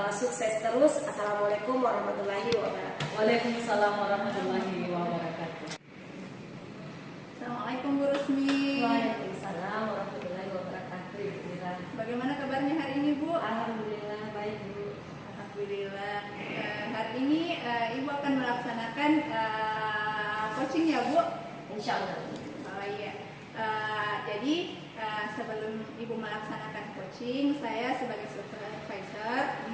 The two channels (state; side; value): identical; both; correlation 1.00